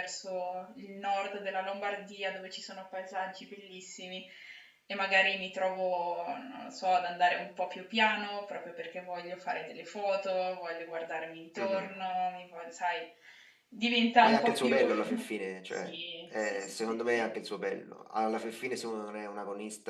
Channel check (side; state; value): both; identical; correlation 1.00